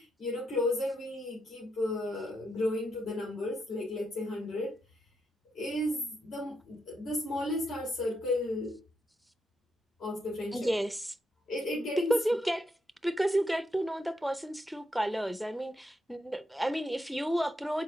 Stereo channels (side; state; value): both; normal; correlation 0.81